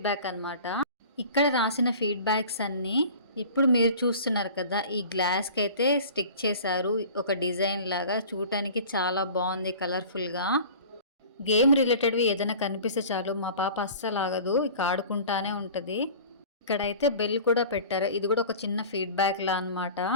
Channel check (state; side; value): inverted; both; correlation -0.41